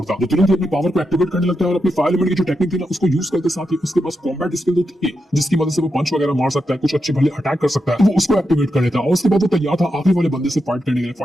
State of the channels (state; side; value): normal; both; correlation 0.86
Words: वो तुरंत ही अपनी पावर को एक्टिवेट करने लगता है और अपनी फायर एलिमेंट की जो टेक्निक थी ना, उसको यूज करते साथ ही उसके पास कॉम्बैट स्किल तो थी जिसकी मदद से वो पंच वगैरह मार सकता है, कुछ अच्छे भले अटैक कर सकता है। तो वो उसको एक्टिवेट कर लेता है और उसके बाद वो तैयार था आखिरी वाले बंदे से फाइट करने के लिए।